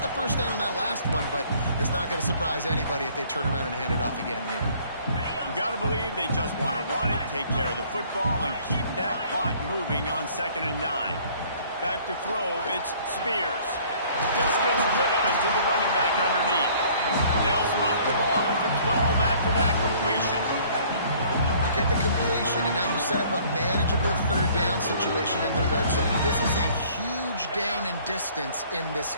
the 1st down on that last one, but it's not going to surprise anybody if they turn around and hand it off again here. You got to believe they just want to run it, take care of the football, and keep that clock moving on 2nd and 9. Back to throw, it's Spears. Just gets rid of it to the running back underneath. They'll spot the ball at the 12 after that completion. You get the completion, and now you set up a manageable 3rd down situation in the red zone. This is a huge down in distance in this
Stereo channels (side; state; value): both; inverted; correlation -0.56